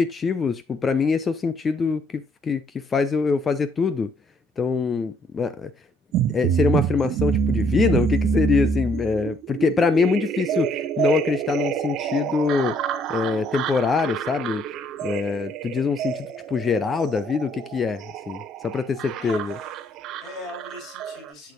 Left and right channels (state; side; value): normal; both; correlation 0.67